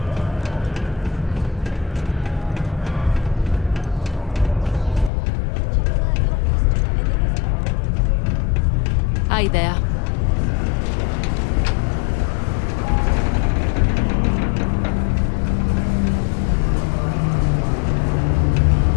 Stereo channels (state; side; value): drops out; right; at 5.1 s